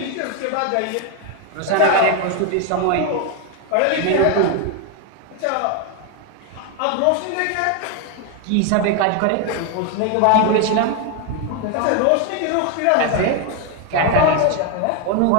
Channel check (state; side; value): different; both; correlation 0.01